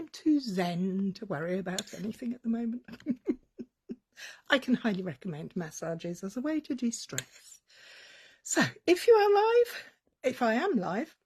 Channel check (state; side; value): identical; both; correlation 1.00